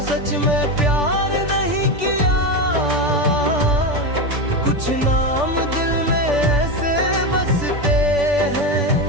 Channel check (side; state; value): left; late; 3.5 ms